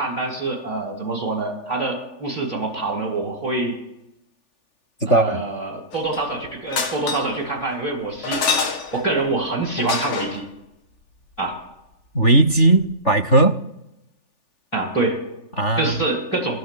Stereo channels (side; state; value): right; late; 3.4 ms